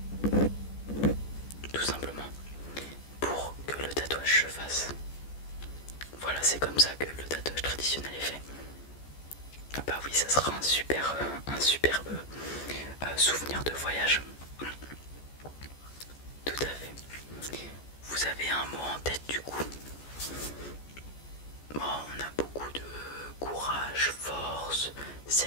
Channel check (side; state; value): right; late; 14 ms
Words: tout simplement, pour que le tatouage se fasse. Voilà, c'est comme ça que le tatouage traditionnel est fait. Ah bah oui, ça sera un superbe souvenir de voyage. Tout à fait. Vous avez un mot en tête du coup? Bon, on a beaucoup de courage, force,